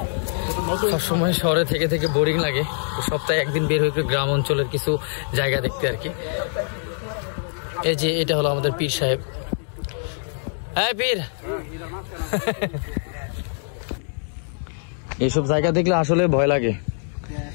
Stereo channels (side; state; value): right; silent; 61 dB below the other